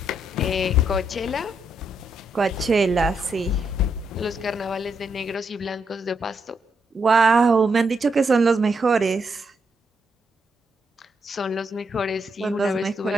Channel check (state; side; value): normal; both; correlation 0.79